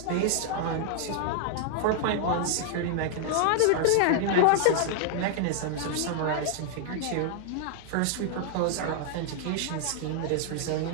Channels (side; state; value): both; different; correlation -0.01